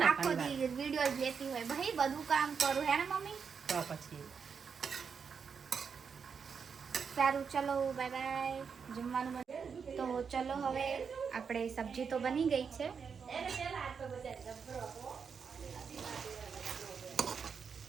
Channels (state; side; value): quieter; left; 6.2 dB